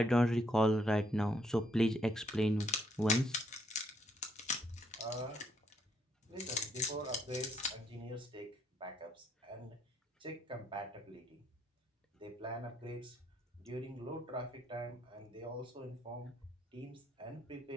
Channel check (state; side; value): normal; both; correlation 0.71